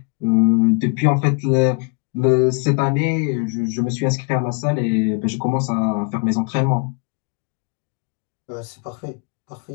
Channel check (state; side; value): quieter; right; 30.1 dB